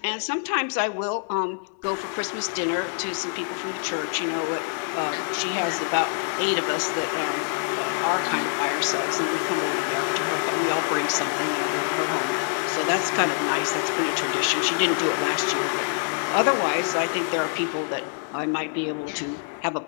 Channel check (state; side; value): silent; right; 57 dB below the other